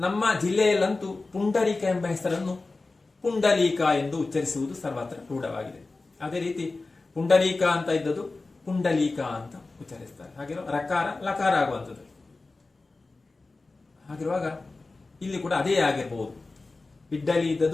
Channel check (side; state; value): right; quieter; 3.5 dB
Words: ಜಿಲ್ಲೆಯಲ್ಲಂತೂ ಪುಂಡರೀಕ ಎಂಬ ಹೆಸರನ್ನು ಪುಂಡಲೀಕ ಎಂದು ಉಚ್ಚರಿಸುವುದು ಸರ್ವತ್ರ ರೂಢವಾಗಿದೆ. ಅದೇ ರೀತಿ ಪುಂಡರೀಕ ಅಂತ ಇದ್ದದ್ದು ಪುಂಡಲೀಕ ಅಂತ ಉಚ್ಚರಿಸ್ತಾರೆ. ಹಾಗಿರೋ ರಕಾರ ಲಕಾರ ಆಗುವಂಥದ್ದು. ಹಾಗಿರುವಾಗ ಇಲ್ಲಿ ಕೂಡ ಅದೇ ಆಗಿರಬಹುದು. ಇಡ್ಡಲಿ